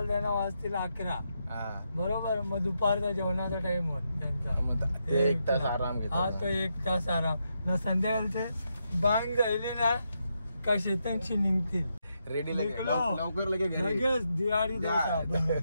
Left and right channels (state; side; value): inverted; both; correlation -0.82